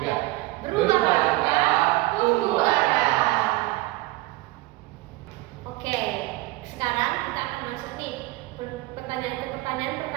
Berubah langkah, tumbuh arah. Oke, sekarang kita akan masuk nih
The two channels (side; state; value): left; quieter; 19.6 dB